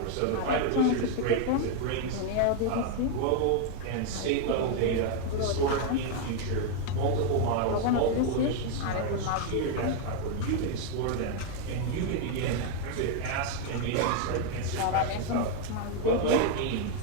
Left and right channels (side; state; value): both; different; correlation 0.00